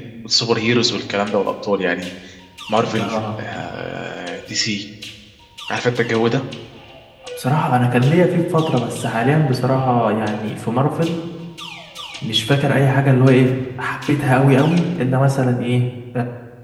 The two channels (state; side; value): identical; both; correlation 1.00